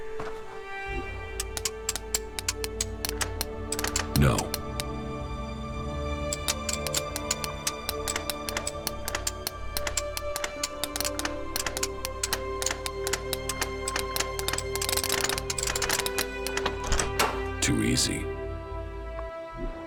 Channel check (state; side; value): identical; both; correlation 1.00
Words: No. Too easy.